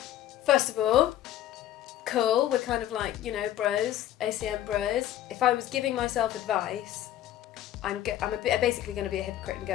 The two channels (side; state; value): right; quieter; 12.5 dB